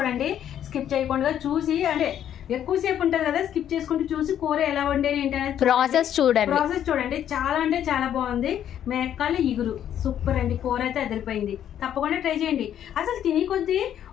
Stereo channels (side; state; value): right; quieter; 10.2 dB